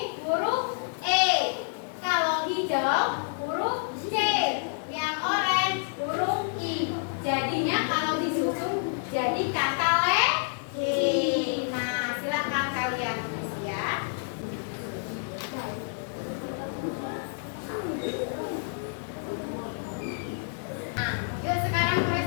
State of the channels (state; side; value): silent; right; digital silence